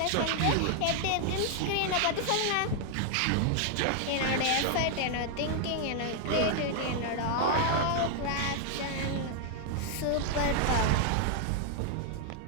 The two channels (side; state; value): both; different; correlation 0.00